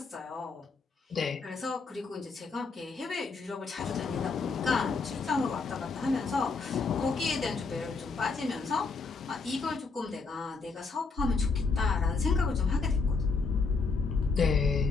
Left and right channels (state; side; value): quieter; right; 4.4 dB